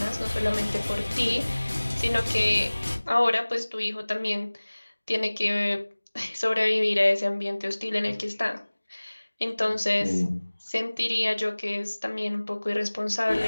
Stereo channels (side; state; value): both; inverted; correlation -1.00